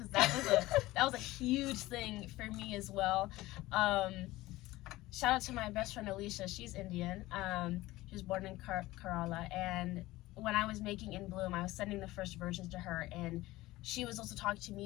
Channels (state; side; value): quieter; right; 18.0 dB